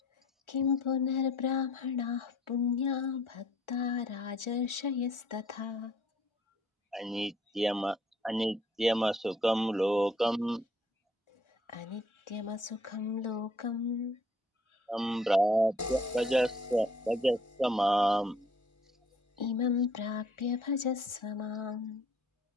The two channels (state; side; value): normal; both; correlation 0.60